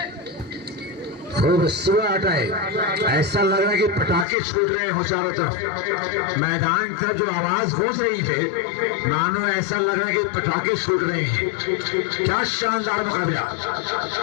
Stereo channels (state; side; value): drops out; right; at 4.2 s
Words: खूब सुबह है ऐसा लग रहा है कि पटाखे छूट रहे हो चारों तरफ मैदान की तरफ जो आवाज गूंज रही है मानो ऐसा लग रहा है कि पटाखे छूट रहे हैं। क्या शानदार मुकाबला